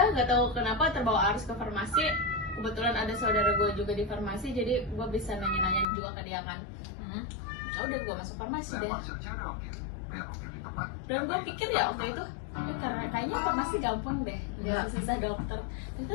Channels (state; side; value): drops out; right; at 5.9 s